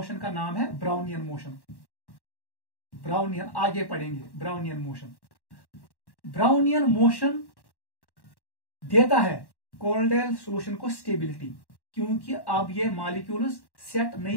का नाम है ब्राउनियन मोशन। ब्राउनियन आगे पढ़ेंगे, ब्राउनियन मोशन। ब्राउनियन मोशन देता है कोलोइडाइल सॉल्यूशन को स्टेबिलिटी, क्योंकि अब ये मॉलिक्यूल्स सेट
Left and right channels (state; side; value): late; right; 1.1 ms